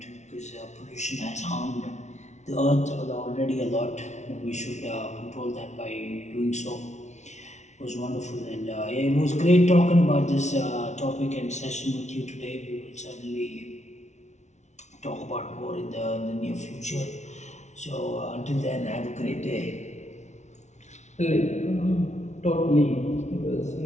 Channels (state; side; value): late; right; 0.33 ms